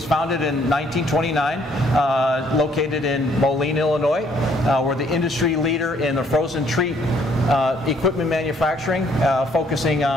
founded in 1929, located in Moline, Illinois. We're the industry leader in the frozen treat equipment manufacturing, focusing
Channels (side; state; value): both; normal; correlation 0.65